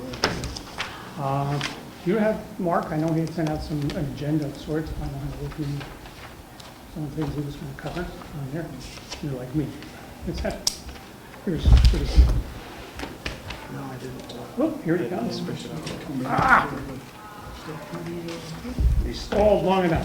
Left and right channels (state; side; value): identical; both; correlation 1.00